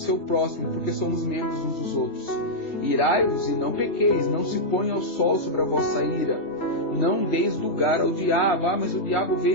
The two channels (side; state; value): right; late; 3.3 ms